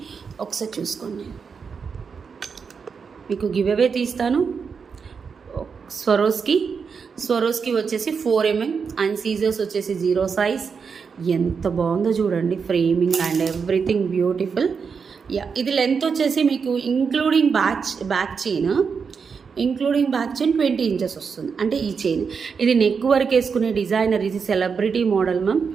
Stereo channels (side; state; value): left; quieter; 5.8 dB